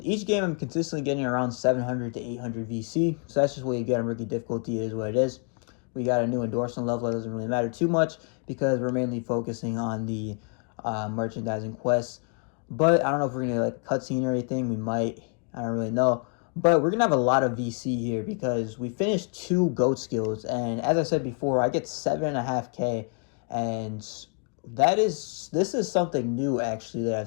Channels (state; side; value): quieter; right; 39.8 dB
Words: each game I'm consistently getting around 700 to 800 VC. So that's just what you get on rookie difficulty, is what it is. We got a new endorsement level. That doesn't really matter too much because we're mainly focusing on the merchandising quests. But I don't know if we're going to like cutscene or anything. We might. I don't really know. But we're going to have a lot of VC here because we finished 2 GOAT skills. And as I said before, I get 7.5K. And this is something new actually that